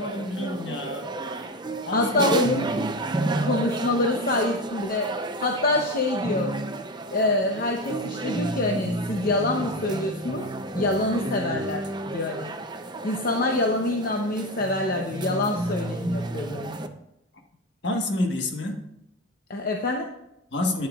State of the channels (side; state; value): both; normal; correlation 0.21